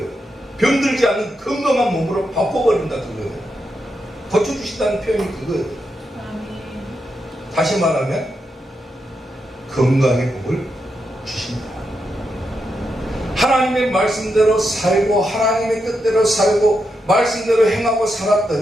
병들지 않는 건강한 몸으로 바꿔버린다 그거예요. 고쳐주신다는 표현이 그거예요. 다시 말하면 건강의 복을 주신다. 하나님의 말씀대로 살고 하나님의 뜻대로 살고 말씀대로 행하고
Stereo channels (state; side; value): normal; both; correlation 0.84